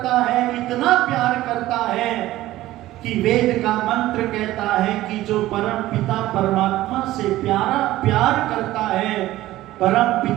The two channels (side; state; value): left; quieter; 15.8 dB